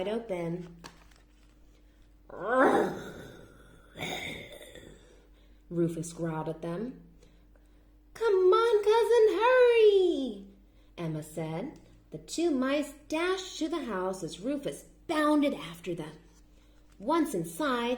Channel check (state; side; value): identical; both; correlation 1.00